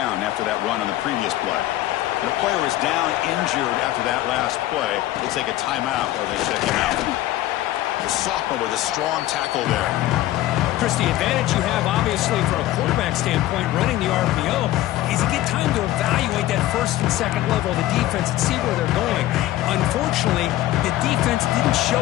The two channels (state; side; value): quieter; right; 15.0 dB